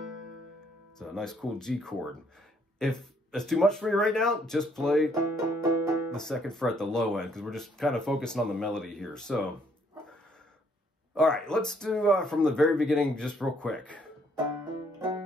it's a nice cool G chord. If that's too much for you right now, just play the 2nd fret, the low end, because we're just kind of focusing on the melody here. So, all right, let's do from the very beginning just real quick.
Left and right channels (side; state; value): both; normal; correlation 0.67